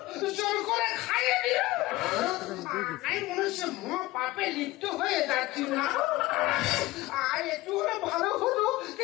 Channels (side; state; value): right; quieter; 18.8 dB